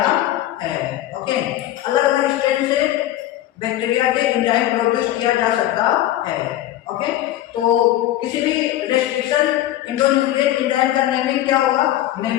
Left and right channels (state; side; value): quieter; right; 14.0 dB